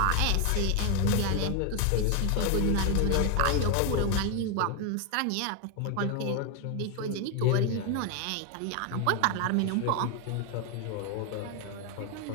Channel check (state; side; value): different; both; correlation 0.01